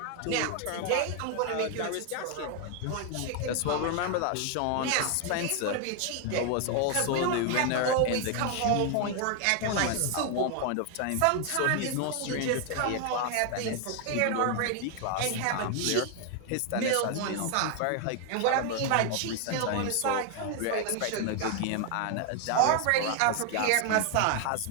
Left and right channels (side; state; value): both; different; correlation 0.00